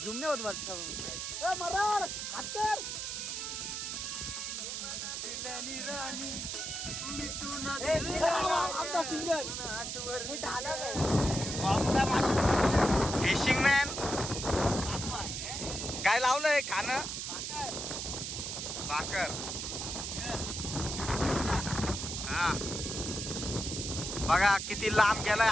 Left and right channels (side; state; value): right; noise; hiss, 4 dB below the sound